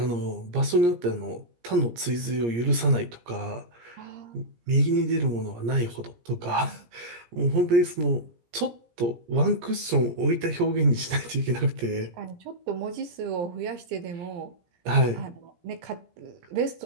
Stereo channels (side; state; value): left; late; 17 ms